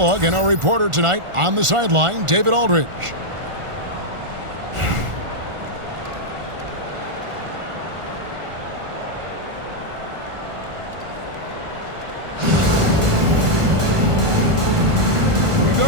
and our reporter tonight on the sideline, David Aldridge. Here we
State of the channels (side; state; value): left; late; 1.4 ms